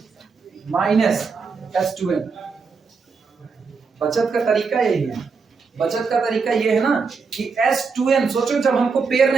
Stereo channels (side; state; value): left; quieter; 5.0 dB